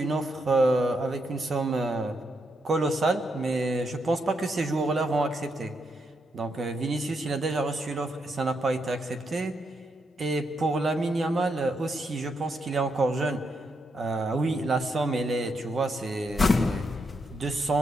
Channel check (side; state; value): both; normal; correlation 0.80